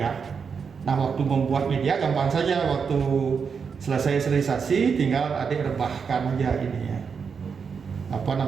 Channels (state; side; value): quieter; left; 6.0 dB